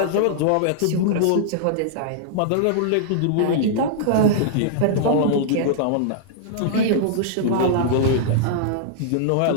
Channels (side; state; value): both; different; correlation -0.02